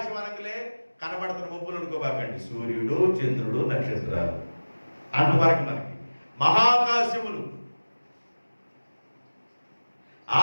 అనగలే కనబడుతున్న మబ్బులు అనుకోబాకండి, సూర్యుడు, చంద్రుడు, నక్షత్రాలు అంతవరకు మనకి మహాకాశములు.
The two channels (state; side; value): inverted; both; correlation -1.00